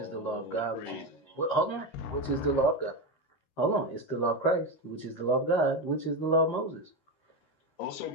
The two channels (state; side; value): late; right; 13 ms